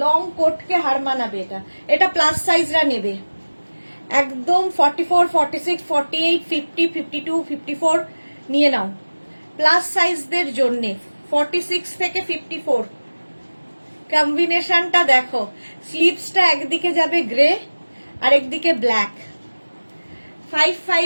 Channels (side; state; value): both; inverted; correlation -1.00